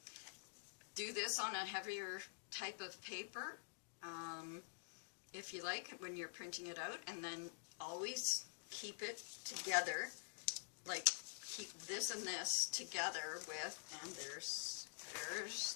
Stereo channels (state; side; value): silent; right; digital silence